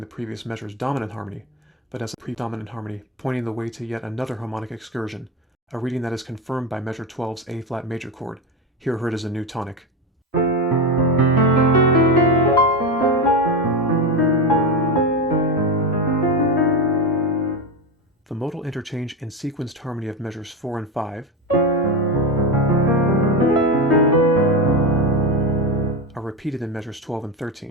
previous measure's dominant harmony, but as a predominant harmony pointing the way to yet another harmonic excursion, a reading that is confirmed by measure 12's A-flat major chord, here heard as a new tonic. The modal interchange and sequenced harmony of measures 4 and 5 are repeated in measures 12 and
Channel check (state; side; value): normal; both; correlation 0.17